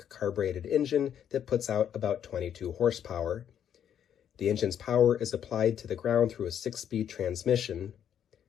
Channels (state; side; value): quieter; right; 9.3 dB